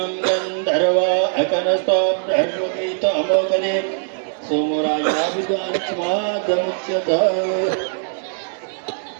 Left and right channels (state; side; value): silent; left; 63 dB below the other